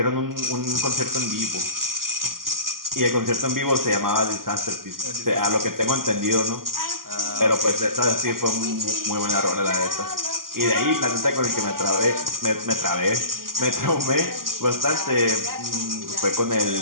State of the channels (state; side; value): late; left; 0.92 ms